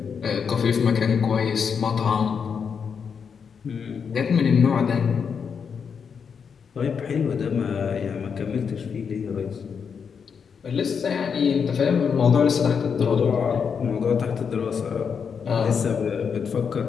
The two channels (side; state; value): right; quieter; 6.5 dB